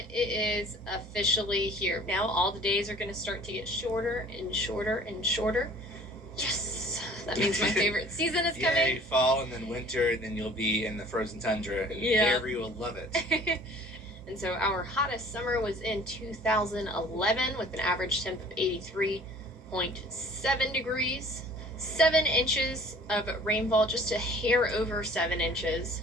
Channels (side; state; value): both; normal; correlation 0.50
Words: it is officially here. Now all the days are going to start to get shorter and shorter and shorter. Yes, that means my favorite season is coming. Yay, fall and then winter, and then you'll be in the frozen tundra, and Avery will love it. And so our hottest summer was in 2011 with an average temp of 83.7 degrees. 7 inches of rainfall, just a hair over 7 inches,